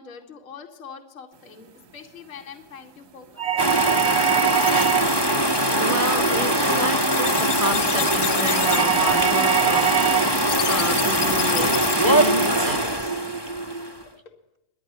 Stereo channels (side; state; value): right; late; 1.2 ms